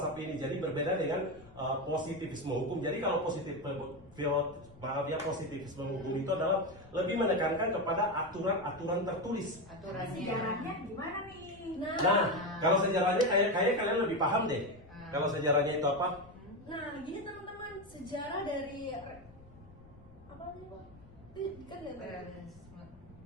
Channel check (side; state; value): left; noise; rumble, 23 dB below the sound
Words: ini. Jadi berbeda dengan positivisme hukum. Jadi kalau positivisme hukum itu adalah lebih menekankan kepada aturan-aturan tertulis. Aturannya. Sejarahnya gimana nih? Nah, kalau sejarahnya kayak kalian lebih paham deh. Kalau sejarahnya itu apa? Nah, gini teman-teman, sejarah dari apa sih Pak? Itu kan ya. Realisme.